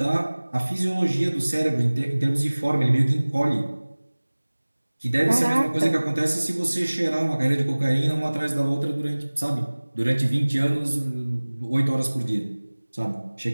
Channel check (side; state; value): both; inverted; correlation -1.00